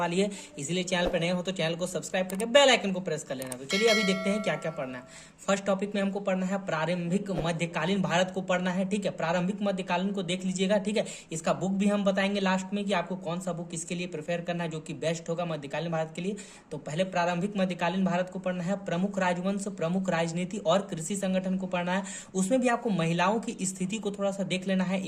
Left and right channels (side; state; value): both; identical; correlation 1.00